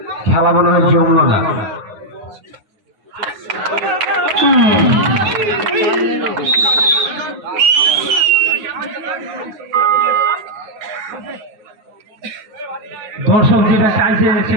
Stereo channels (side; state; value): left; late; 9.5 ms